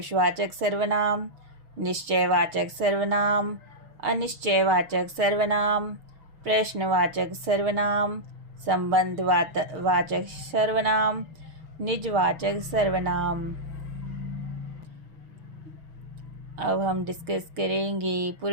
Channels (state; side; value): late; left; 6.3 ms